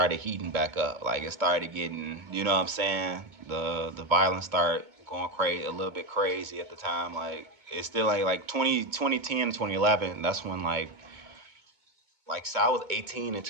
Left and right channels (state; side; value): late; left; 2.2 ms